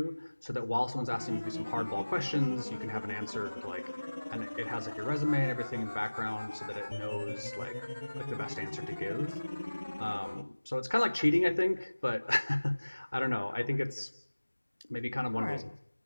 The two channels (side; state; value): both; inverted; correlation -1.00